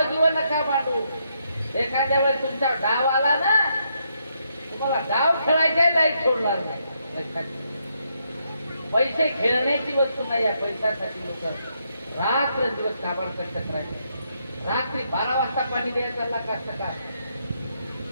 जीवन नका मांडू. एखाद्या वेळेस तुमचा डाव आला ना, तुम्हाला डाव खेळायचा लाईक सोडणार नाही. पैसे खेळण्याची वस्तू नाही. या पैशासाठी लोक रात्र दिवस काबाड कष्ट करायचे. रात्री 12 वाजता पाणी द्यायचा कष्ट का?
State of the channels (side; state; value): both; inverted; correlation -0.77